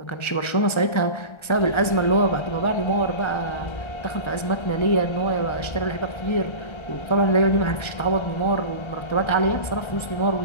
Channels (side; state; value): right; late; 1.3 ms